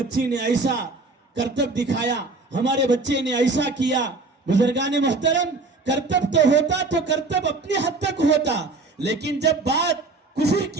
نے ایسا کرتب دکھایا, ہمارے بچے نے ایسا کیا. بزرگان محترم, کرتب تو ہوتا تو کرتب اپنی حد تک ہوتا, لیکن جب بات کفر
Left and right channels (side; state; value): left; quieter; 3.6 dB